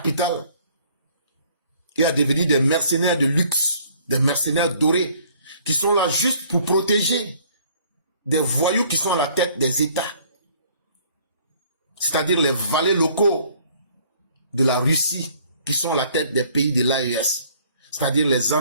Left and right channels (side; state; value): both; inverted; correlation -0.58